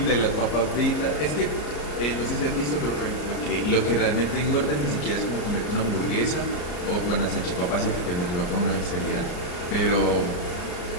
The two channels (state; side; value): late; right; 34 ms